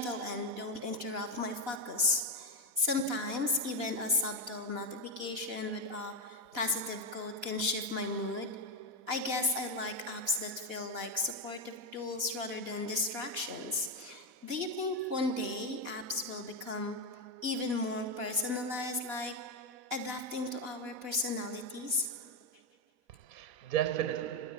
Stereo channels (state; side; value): late; left; 4.1 ms